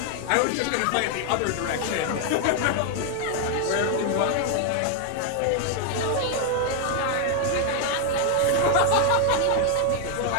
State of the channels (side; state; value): both; different; correlation 0.00